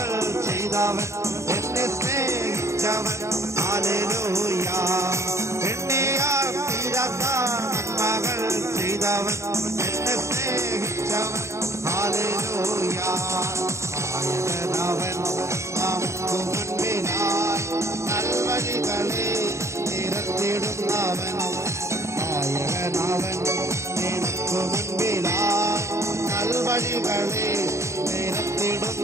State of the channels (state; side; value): late; left; 0.14 ms